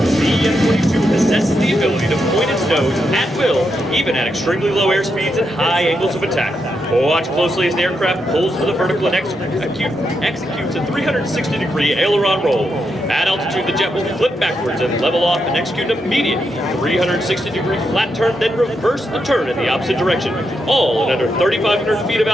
The F-22 possesses the ability to point its nose at closely as the aircraft pulls to the vertical and executes a 360-degree aileron roll. At altitude, the jet will flip backwards and level off and execute an immediate 360-degree flat turn, then reverse the turn in the opposite direction, all at under 3,500 feet of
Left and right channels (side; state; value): both; normal; correlation 0.83